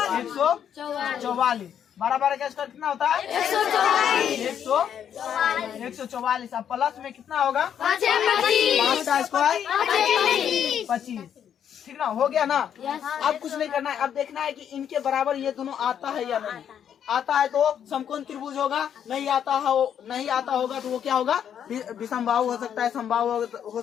12 का स्क्वायर कितना होता है 144। अब प्लस में कितना होगा 5 का स्क्वायर 25, ठीक ना, हो गया ना। अब कुछ नहीं करना है, अब देखना है कि इनके बराबर ये दोनों आता है या नहीं। आता है तो समकोण त्रिभुज होगा, नहीं आता होगा तो वो क्या होगा विषमबाहु हो सकता है, समबाहु हो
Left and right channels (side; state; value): right; quieter; 8.9 dB